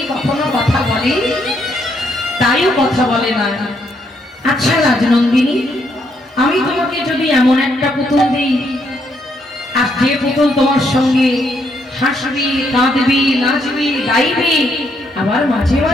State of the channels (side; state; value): both; normal; correlation 0.74